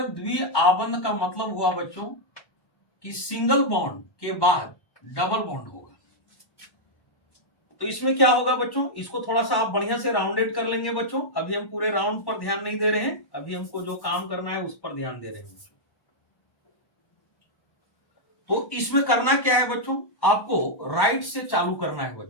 द्विआबंध का मतलब हुआ बच्चों कि सिंगल बॉन्ड के बाद डबल बॉन्ड होगा। तो इसमें क्या होगा बच्चों, इसको थोड़ा सा आप बढ़िया से राउंडेड कर लेंगे बच्चों। अभी हम पूरे राउंड पर ध्यान नहीं दे रहे हैं, अभी हमको जो काम करना है उस पर ध्यान दे रहे हैं बच्चों। तो इसमें करना क्या है बच्चों, आपको राइट से चालू करना है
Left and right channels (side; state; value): right; late; 1.1 ms